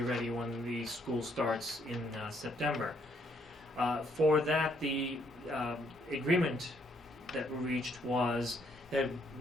ready when the school starts in September. For that, the agreement that we reached was that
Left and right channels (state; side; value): normal; both; correlation 0.70